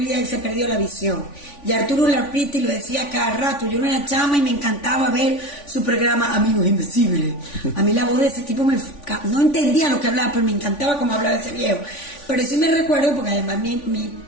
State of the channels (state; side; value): late; right; 3.5 ms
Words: que se perdió la visión. Y Arturo Larpriti lo decía cada rato. Yo era chama y me encantaba ver su programa Amigos Invisibles. A mí la voz de ese tipo no entendía lo que hablaba, pero me encantaba cómo hablaba ese viejo. Pero sí me recuerdo, porque además mi